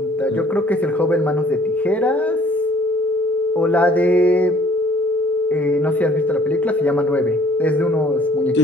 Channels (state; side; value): normal; both; correlation 0.57